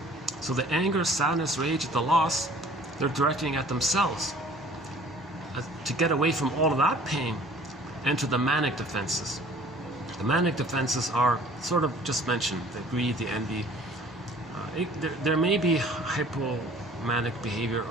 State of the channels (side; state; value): both; normal; correlation 0.51